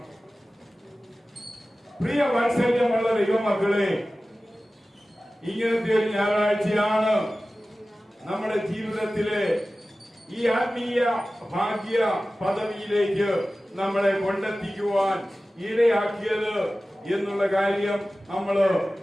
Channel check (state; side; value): normal; both; correlation 0.96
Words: പ്രിയ വാത്സല്യമുള്ള ദൈവമക്കളെ, ഇങ്ങനത്തെ ഒരു ഞായറാഴ്ചയാണ് നമ്മുടെ ജീവിതത്തിലെ ഈ ആത്മീയ ഭാഗ്യ പദവിയിലേക്ക് നമ്മളെ കൊണ്ടെത്തിക്കുവാൻ ഇടയാക്കിയത് എന്നുള്ള കാര്യം നമ്മൾ